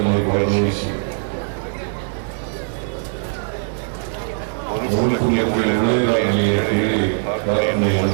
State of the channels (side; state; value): left; silent; 65 dB below the other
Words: ಮನುಕುಲಕ್ಕೆ ಒಳ್ಳೆಯದಾಗಲಿ ಅಂತೇಳಿ ಪ್ರಾರ್ಥನೆಯನ್ನು